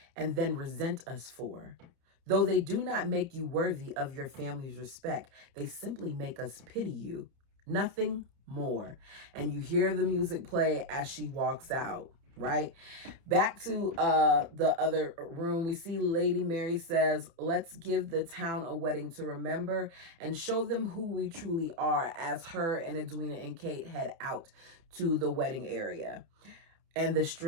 and then resent us for. Though they do not make you worthy of your family's respect, they simply make us pity you. Nothing more. And you hear the music play as she walks out, right? Back to the other room, we see Lady Mary says, let's give the town a wedding to remember and show them who we truly are, as her and Edwina and Kate head out to the wedding area. And the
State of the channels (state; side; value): late; left; 30 ms